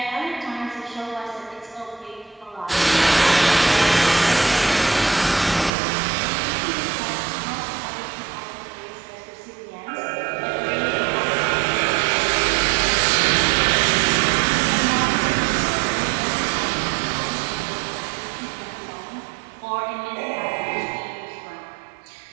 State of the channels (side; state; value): left; drops out; at 5.7 s